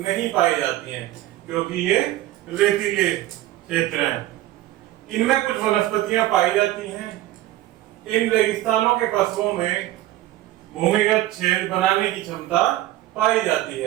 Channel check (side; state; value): left; quieter; 15.3 dB